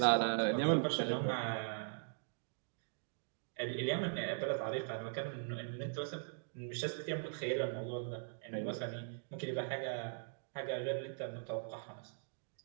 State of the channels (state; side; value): silent; left; digital silence